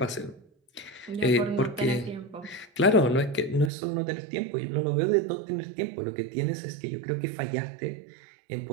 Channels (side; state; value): left; drops out; at 3.7 s